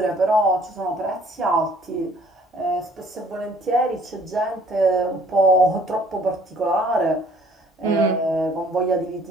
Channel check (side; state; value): both; normal; correlation 0.57